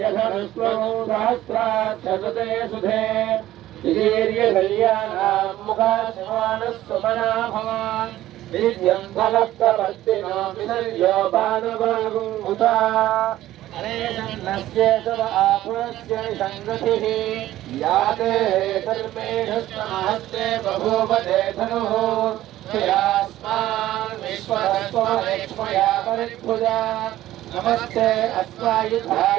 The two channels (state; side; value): quieter; left; 14.4 dB